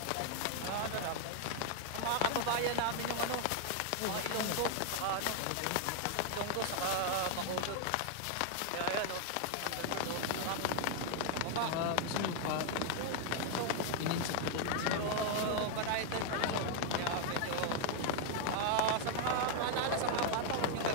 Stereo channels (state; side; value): different; both; correlation 0.00